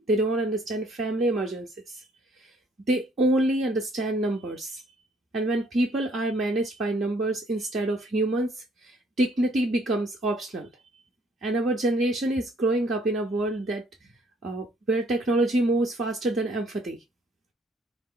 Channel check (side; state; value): both; normal; correlation 0.63